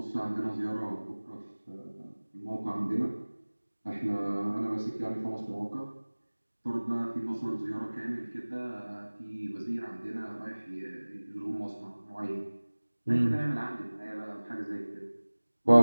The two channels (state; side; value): inverted; both; correlation -1.00